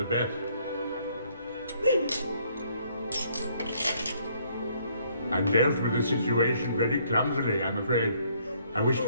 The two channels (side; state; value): both; inverted; correlation -0.65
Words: best. I dealt with the situation very clumsily, I'm afraid. I wish